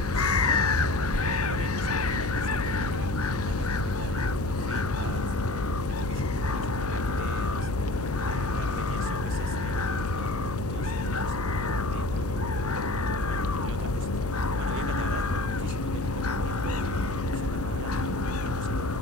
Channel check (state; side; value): noise; left; hum, 6 dB below the sound